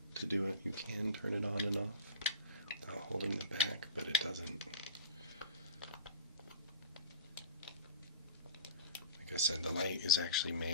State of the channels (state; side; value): inverted; both; correlation -0.33